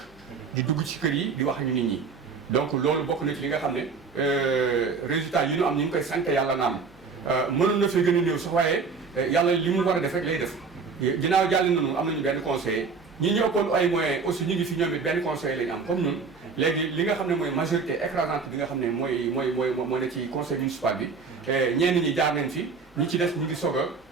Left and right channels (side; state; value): left; quieter; 4.9 dB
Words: di dugg ci kër yi di wax ñu nit ñi. donc loolu bokk na ci li nga xam ne résultat yi ñu am ñu ngi koy sant yàlla naam mënoon na fee gën a néew sax waaye yàlla li mu war a def rek lay def ginnaaw jàll nañu am nañu benn conseiller ñi ñu ëppoon ay moyens aussi ñu ngi fi ñoom it benn conseiller lañu am comme ñun léegi li nga xam ne mooy majorité écrasante bi nga xam ne moo ne ci conseil municipal bi ñenn ñi jaar nañ fi ñi ci des ñu ngi